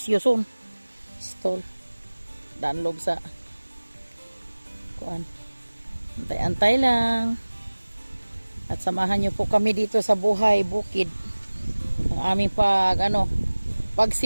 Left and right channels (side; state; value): both; inverted; correlation -1.00